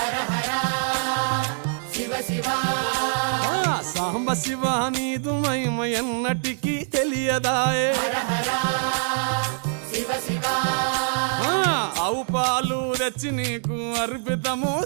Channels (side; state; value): left; silent; digital silence